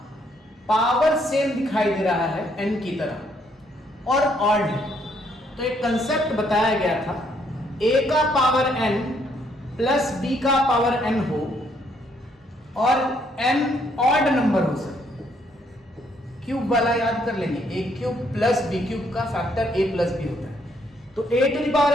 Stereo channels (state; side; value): normal; both; correlation 0.70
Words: पावर सेम दिखाई दे रहा है n की तरह और ऑड है, तो एक कंसेप्ट बताया गया था a का पावर n प्लस b का पावर n हो और n ऑड नंबर हो। सर क्यूब वाला याद कर लेंगे, a cube plus b cube का फैक्टर a प्लस b होता है। तो a to the power